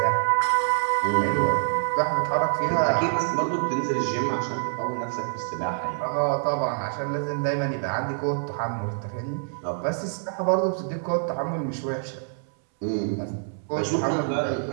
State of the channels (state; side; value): silent; left; 61 dB below the other